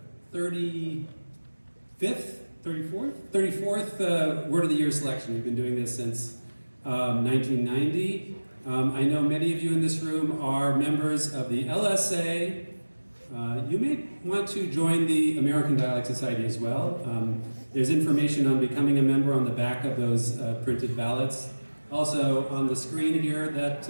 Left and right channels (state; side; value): inverted; both; correlation -1.00